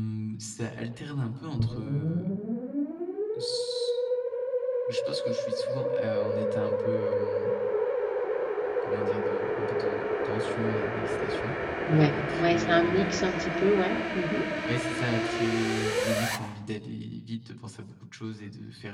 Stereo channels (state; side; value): identical; both; correlation 1.00